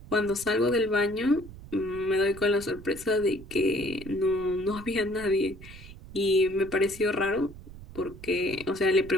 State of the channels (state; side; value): noise; right; rumble, 16 dB below the sound